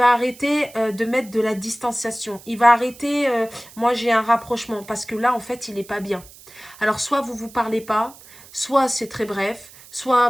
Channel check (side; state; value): right; noise; hiss, 21 dB below the sound